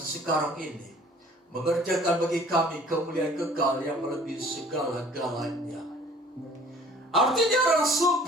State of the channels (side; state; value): both; normal; correlation 0.52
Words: ini mengerjakan bagi kami kemuliaan kekal yang melebihi segala-galanya. Artinya Rasul